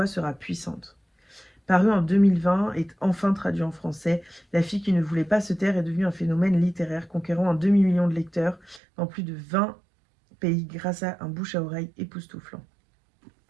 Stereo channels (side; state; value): left; drops out; at 8.8 s